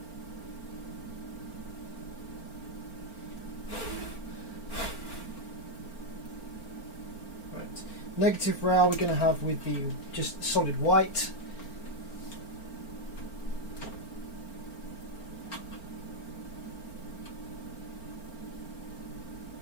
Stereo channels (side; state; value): right; late; 4.4 ms